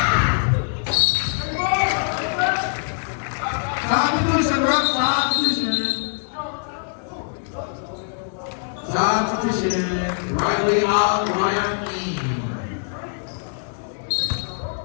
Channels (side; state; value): right; silent; digital silence